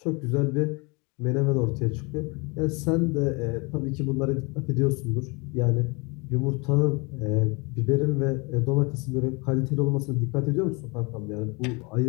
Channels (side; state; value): right; quieter; 29.1 dB